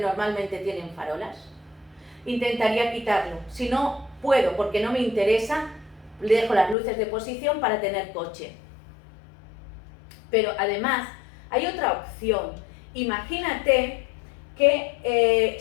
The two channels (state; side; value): drops out; right; at 6.8 s